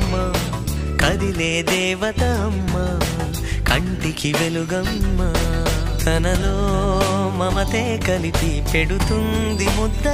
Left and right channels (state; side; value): identical; both; correlation 1.00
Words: కదిలే దేవత అమ్మా కంటికి వెలుగమ్మా తనలో మమతే కలిపి పెడుతుంది